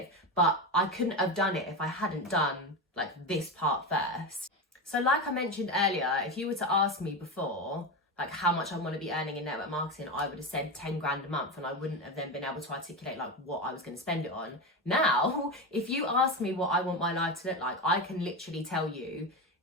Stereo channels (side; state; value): both; normal; correlation 0.18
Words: But I couldn't have done it if I hadn't done like this part first. So like I mentioned earlier, if you were to ask me before, like how much I want to be earning in network marketing, I would have said 10 grand a month and I wouldn't have then been able to articulate like what I was going to spend it on. Now, if you ask me what I want my life to look like, I can literally tell you